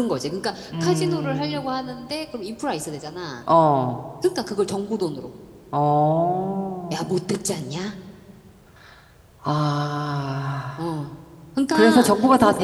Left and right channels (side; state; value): both; identical; correlation 1.00